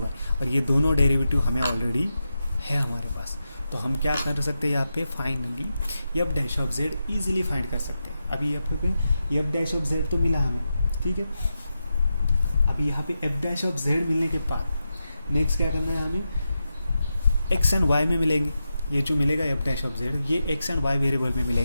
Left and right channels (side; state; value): both; inverted; correlation -0.89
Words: और ये दोनों डेरिवेटिव हमें ऑलरेडी है हमारे पास। तो हम क्या कर सकते हैं यहाँ पे? Finally F dash of Z easily find कर सकते हैं। अभी यहाँ पे एफ डैश ऑफ जेड तो मिला हमें, ठीक है? अभी यहाँ पे एफ डैश ऑफ जेड मिलने के बाद नेक्स्ट क्या करना है हमें? एक्स एंड वाई में मिलेंगे, ये जो मिलेगा एफ डैश ऑफ जेड ये एक्स एंड वाई वेरिएबल में